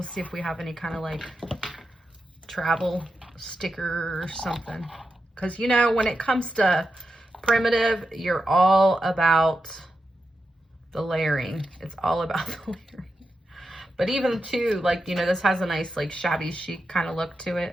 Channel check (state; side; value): normal; both; correlation 0.88